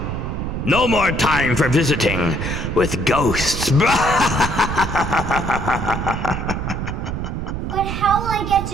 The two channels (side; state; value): right; noise; rumble, 4 dB below the sound